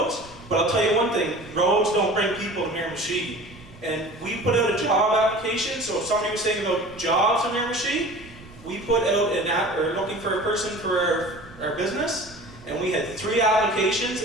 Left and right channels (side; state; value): right; noise; rumble, 20 dB below the sound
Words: But I'll tell you one thing, roads don't bring people to Miramichi. And we put out a job application, so if somebody was saying about jobs in Miramichi, we put out an app, or looking for a person for our business, and we had 3 applications,